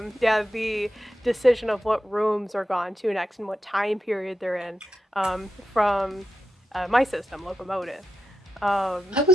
decision of what rooms are gone to next and what time period they're in from my system, Locomotive. I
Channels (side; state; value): both; normal; correlation 0.89